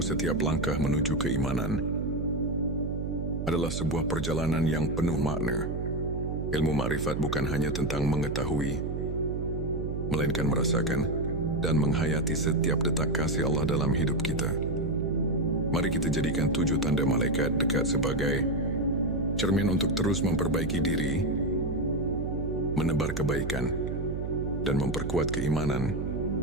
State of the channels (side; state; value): right; noise; hum, 3 dB below the sound